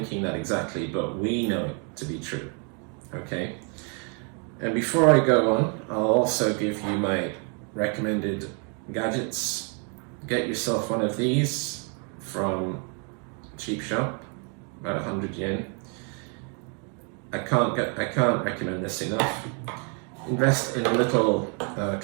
that exactly, but we know it to be true. Okay? And before I go on, I'll also give you my recommended gadgets. Get yourself one of these from Cheap Shop, about 100 yen. I can't recommend this enough. Invest in a little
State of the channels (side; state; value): left; quieter; 38.3 dB